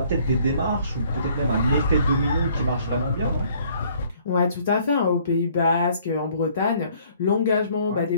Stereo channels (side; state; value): both; inverted; correlation -0.60